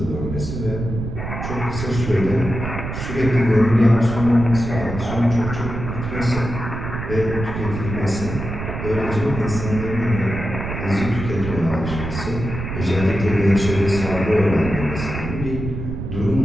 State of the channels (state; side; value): noise; right; rumble, 6 dB below the sound